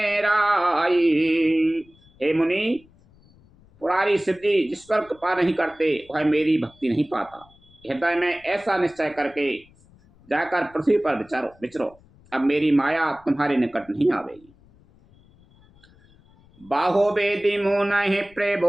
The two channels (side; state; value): left; noise; rumble, 28 dB below the sound